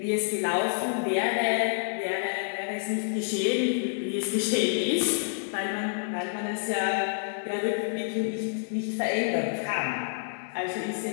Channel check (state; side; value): silent; right; 55 dB below the other